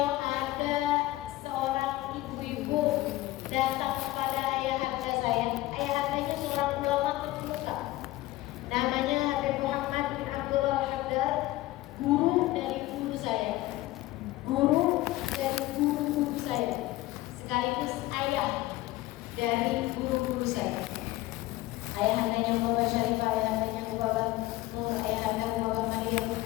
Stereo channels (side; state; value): right; quieter; 17.6 dB